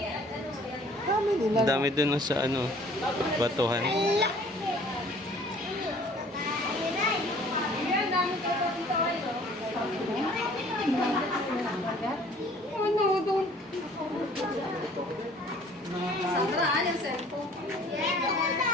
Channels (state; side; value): normal; both; correlation 0.53